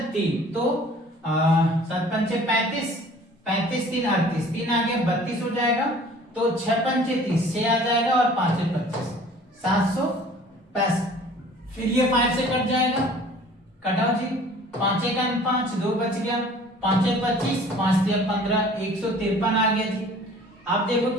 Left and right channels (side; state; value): both; normal; correlation 0.50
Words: 3। तो 7 पंचे 35, 35 3 38, 3 आ गया 32 हो जाएगा। तो 6 पंचे 30, 6 आ जाएगा और 5 25, 765। फिर ये 5 से कट जाएगा, कटाओ जी, 5 का 5, 2 बच गया, 5 25, 5 15, 153 आ गया जी। अब देखो